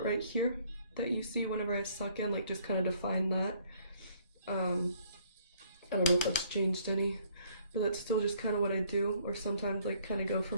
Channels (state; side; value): inverted; both; correlation -0.63